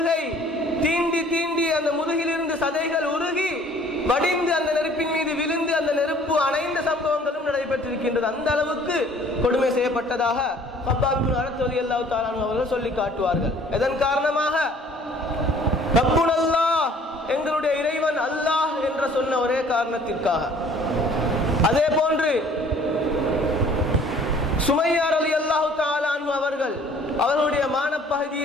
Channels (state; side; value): normal; both; correlation 0.54